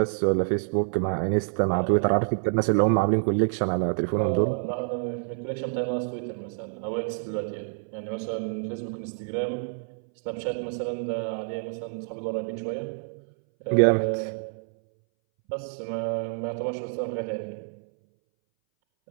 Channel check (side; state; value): left; silent; 60 dB below the other